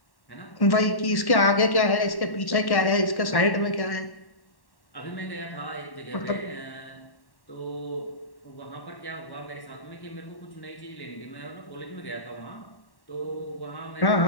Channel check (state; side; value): late; right; 1.1 ms